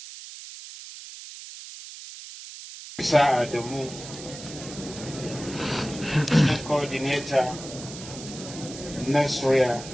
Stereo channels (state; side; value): noise; right; hiss, 13 dB below the sound